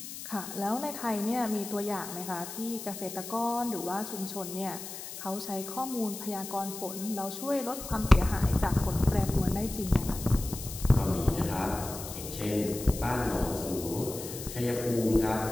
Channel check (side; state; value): left; noise; hiss, 10 dB below the sound